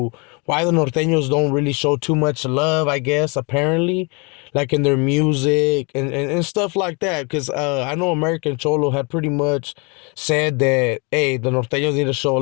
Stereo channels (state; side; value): quieter; right; 31.3 dB